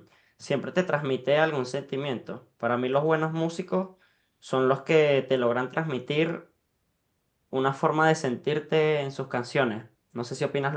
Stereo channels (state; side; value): identical; both; correlation 1.00